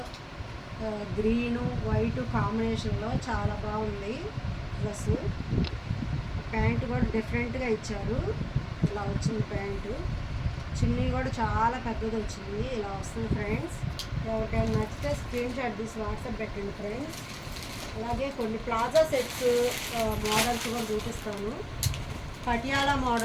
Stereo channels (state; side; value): identical; both; correlation 1.00